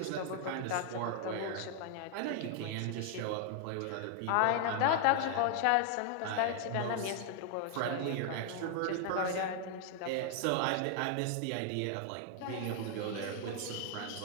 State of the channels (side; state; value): both; different; correlation 0.00